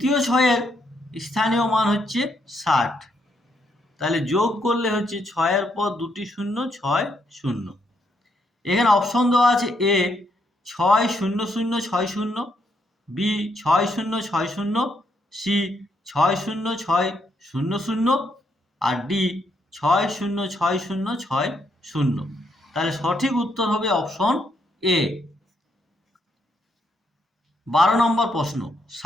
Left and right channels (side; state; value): both; normal; correlation 0.75